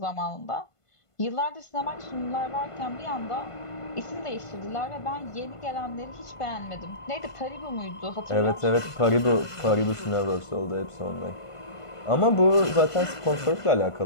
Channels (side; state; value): right; late; 1.5 ms